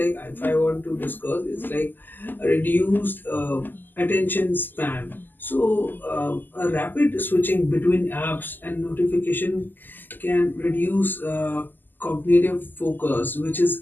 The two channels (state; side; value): late; right; 0.089 ms